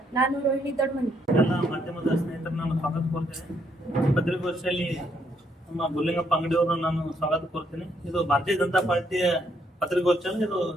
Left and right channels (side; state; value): both; normal; correlation 0.73